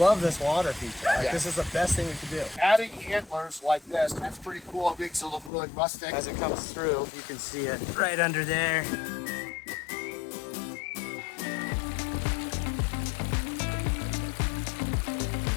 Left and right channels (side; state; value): right; drops out; at 5.5 s